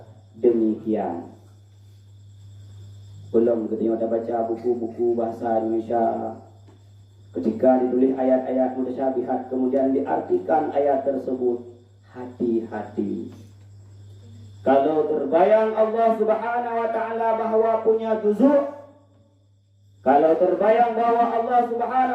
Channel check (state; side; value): identical; both; correlation 1.00